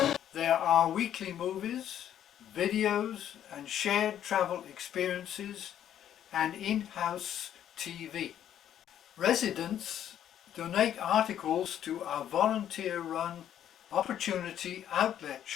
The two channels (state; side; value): quieter; right; 10.4 dB